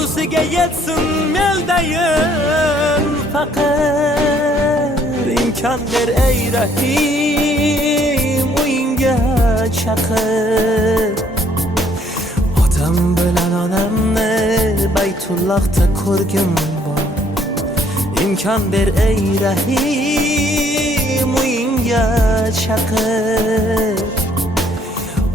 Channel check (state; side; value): normal; both; correlation 0.64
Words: yetsin meldayin faqir. İmkan ber ey rahim, uyinga chaqir. Otam bilan onamni Baytullahda ko'rgim bor. İmkan ber ey rahim, uyinga chaqir.